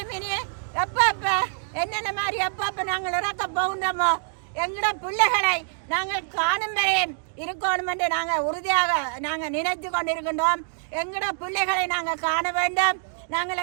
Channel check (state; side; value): silent; left; digital silence